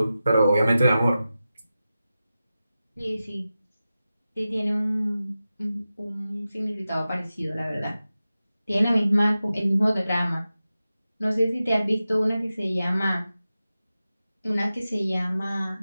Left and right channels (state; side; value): inverted; both; correlation -0.94